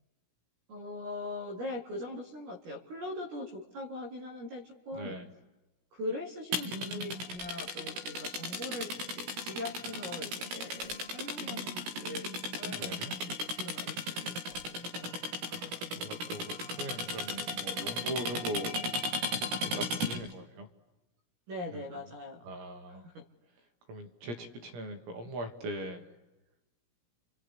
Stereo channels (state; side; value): late; left; 17 ms